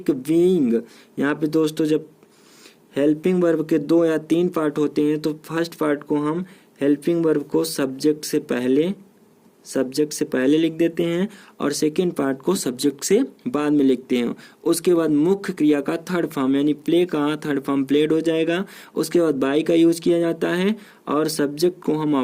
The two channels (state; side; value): identical; both; correlation 1.00